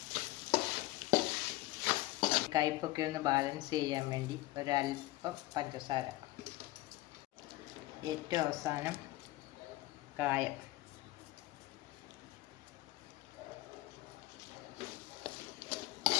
കയ്പ്പൊക്കെ ഒന്ന് ബാലൻസ് ചെയ്യാൻ വേണ്ടി ഒരല്പം പഞ്ചസാര. ഏറ്റവും അവസാനം കായം.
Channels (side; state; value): right; quieter; 17.9 dB